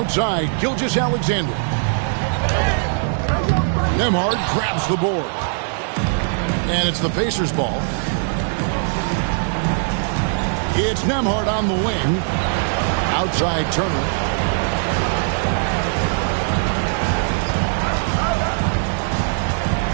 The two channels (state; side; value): silent; left; digital silence